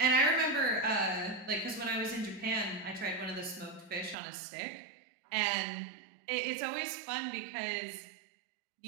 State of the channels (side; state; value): left; drops out; at 4.2 s